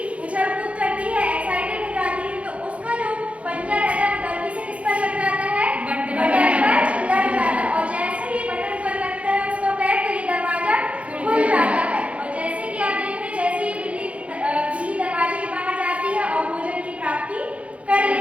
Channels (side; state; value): left; late; 0.063 ms